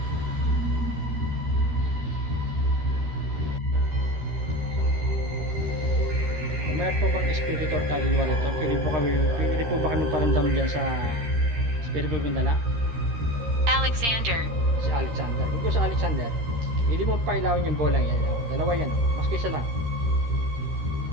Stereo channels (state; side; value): late; left; 13 ms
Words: Kung mayroon po bang espiritu or kaluluwa rito, pwede po ba kami paramdam dyan sa espiritu kong dala? Alexander. Si Alexander. Kung sa Alexander, hindi mo pailawin yung bolang yan. Oh, dalawa yan. Oh. Mas kaysa lang.